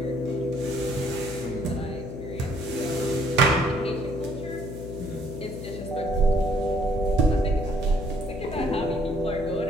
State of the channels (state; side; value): noise; left; hum, 8 dB below the sound